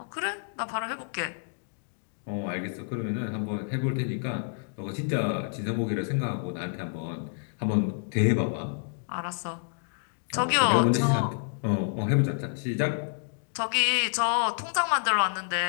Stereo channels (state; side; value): silent; right; digital silence